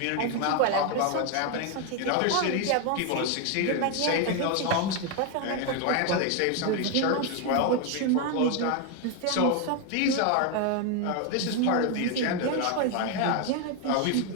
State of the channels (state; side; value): different; both; correlation 0.01